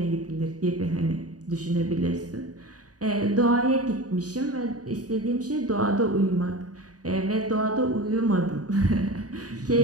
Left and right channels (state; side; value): late; left; 0.68 ms